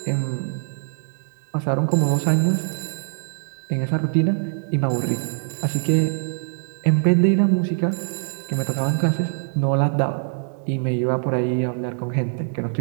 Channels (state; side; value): silent; left; digital silence